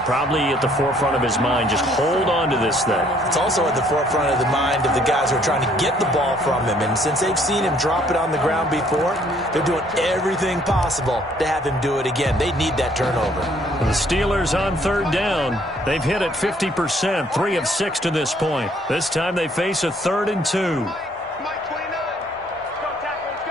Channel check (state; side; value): normal; both; correlation 0.63